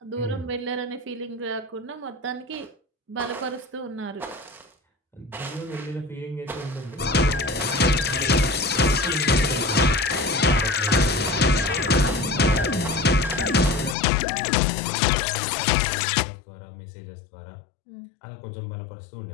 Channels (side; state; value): right; drops out; at 14.0 s